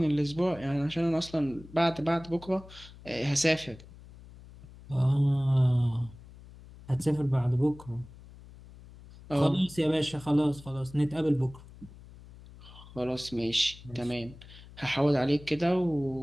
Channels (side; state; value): left; noise; hum, 19 dB below the sound